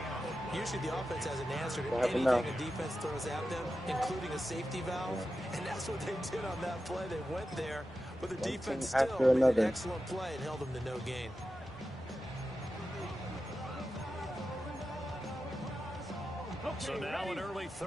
Usually the offense has an answer to anything a defense throws at them, including a safety valve, and that's what they did on that play. They went there, but the defense still made an excellent play and held them to no gain. So now an early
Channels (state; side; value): normal; both; correlation 0.91